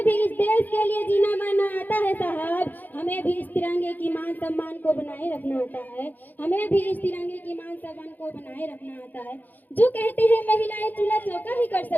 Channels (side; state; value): right; late; 0.084 ms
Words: भी इस देश के लिए जीना मरना आता है साहब, हमें भी इस तिरंगे की मान सम्मान को बनाए रखना आता है, हमें भी इस तिरंगे की मान सम्मान को बनाए रखना आता है। जो कहते हैं महिलाएं चूल्हा चौका ही कर